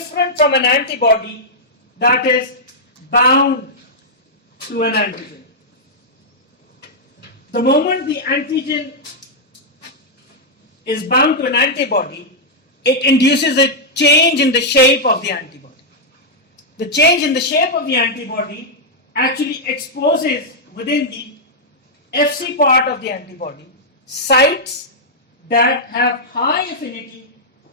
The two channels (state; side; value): normal; both; correlation -0.06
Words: from an antibody that is bound to an antigen. The moment the antigen is bound to an antibody, it induces a change in the shape of the antibody. The change in the shape of the antibody actually exposes within the Fc part of the antibody sites that have high affinity